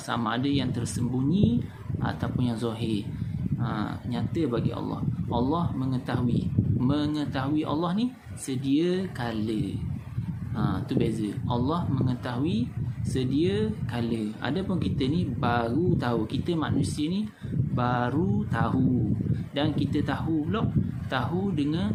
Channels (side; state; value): both; identical; correlation 1.00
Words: ada yang tersembunyi ataupun yang zahir. Nyata bagi Allah. Allah mengetahui. Mengetahui Allah ni sedia kala. Tu beza. Allah mengetahui sedia kala. Adapun kita ni baru tahu. Kita manusia ni baru tahu. Dan kita tahu pula, tahu dengan